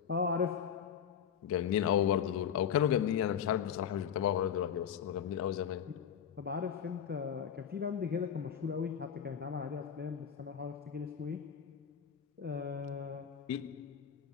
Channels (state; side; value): quieter; right; 8.2 dB